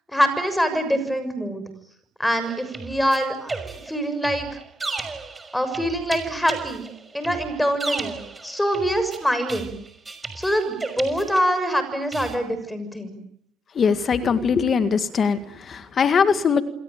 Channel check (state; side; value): normal; both; correlation 0.84